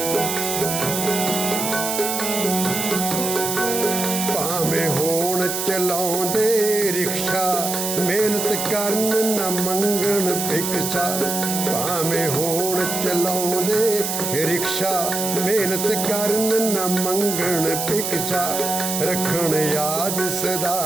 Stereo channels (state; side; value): noise; right; hiss, 2 dB below the sound